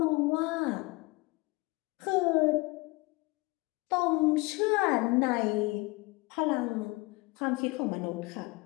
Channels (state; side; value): quieter; right; 24.4 dB